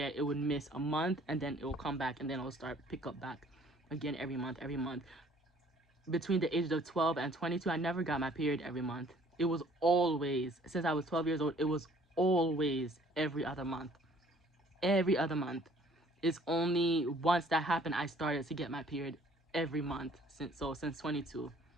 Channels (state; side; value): normal; both; correlation 0.56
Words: it would miss a month, and then it will come back, and then it'll start pick up back again every month, every month. Between the ages of 12 and 22, I never got my period every month. It was always, since I was 12 years old, it was always every other month. Every other month. It's only once that happened I started to get my period every month since 22.